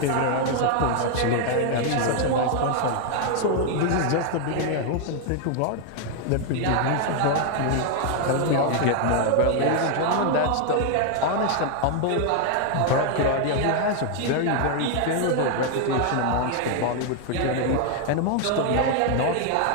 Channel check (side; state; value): both; different; correlation 0.00